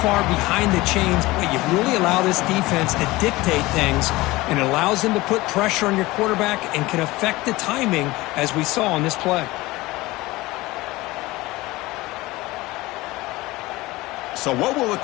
far behind the chains, you really allow this defense to dictate things, and it allows them to put pressure on your quarterback and can affect the timing, as we saw on this play. So what will the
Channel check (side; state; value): right; quieter; 20.0 dB